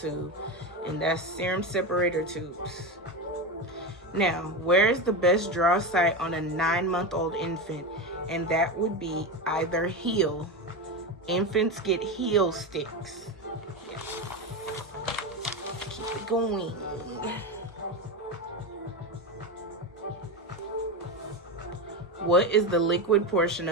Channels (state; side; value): normal; both; correlation 0.18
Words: And that's serum separator tubes. Now, where is the best draw site on a 9-month-old infant? And that would be either heel. Infants get heel sticks. Yes. Keep it going. What is the liquid portion